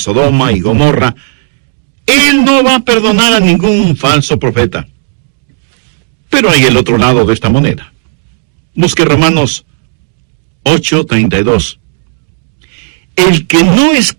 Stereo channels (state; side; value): silent; left; digital silence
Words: y Gomorra, Él no va a perdonar a ningún falso profeta. Pero hay el otro lado de esta moneda. Busque Romanos 8:32. El que no